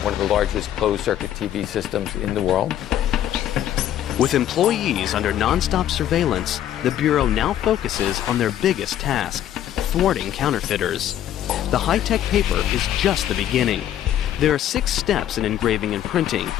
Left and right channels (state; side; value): quieter; right; 11.4 dB